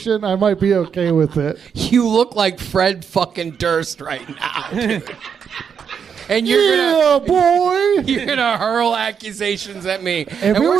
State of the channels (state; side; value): quieter; left; 7.1 dB